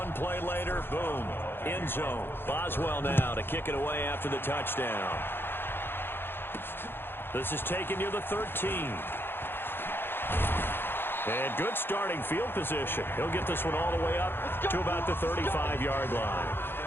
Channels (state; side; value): late; right; 0.10 ms